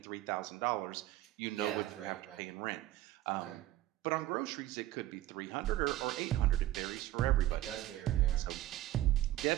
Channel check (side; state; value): left; quieter; 14.7 dB